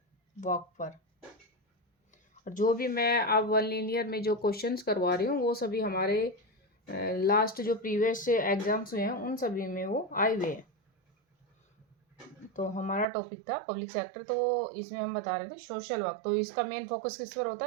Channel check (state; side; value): drops out; left; at 13.1 s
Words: वर्क पर। और जो भी मैं अब वन लीनियर में जो क्वेश्चंस करवा रही हूँ वो सभी हमारे लास्ट जो प्रीवियस एग्जाम्स हुए हैं उन सभी में वो आए हुए हैं। तो हमारा टॉपिक था पब्लिक सेक्टर, तो इसमें हम बता रहे थे सोशल वर्क। तो इसका मेन फोकस किस पर होता